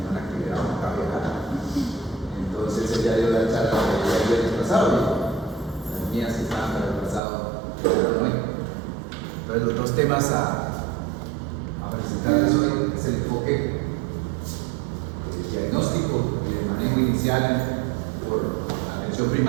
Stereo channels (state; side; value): drops out; left; at 7.2 s